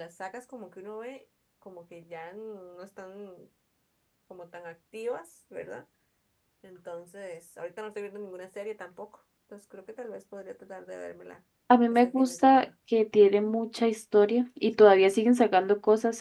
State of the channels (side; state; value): both; identical; correlation 1.00